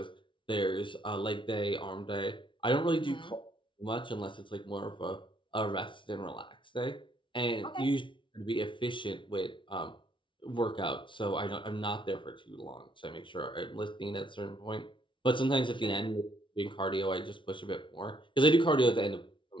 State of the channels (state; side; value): late; right; 0.24 ms